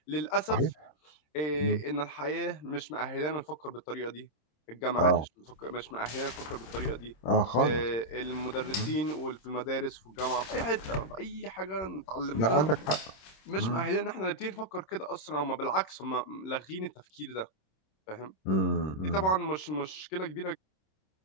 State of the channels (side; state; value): right; late; 26 ms